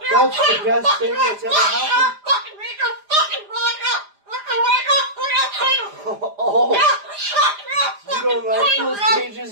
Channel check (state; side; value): late; left; 4.9 ms